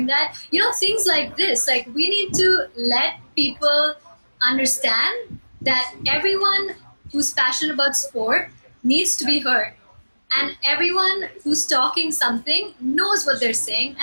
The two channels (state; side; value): inverted; both; correlation -1.00